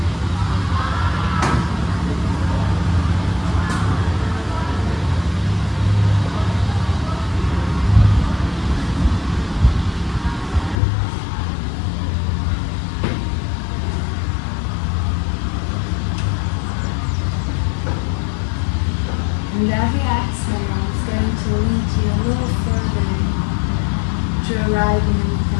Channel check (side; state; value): right; drops out; at 10.8 s